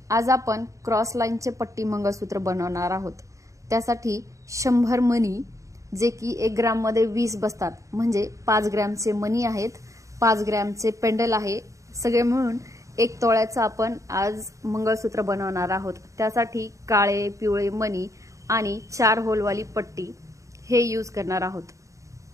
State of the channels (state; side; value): late; left; 0.15 ms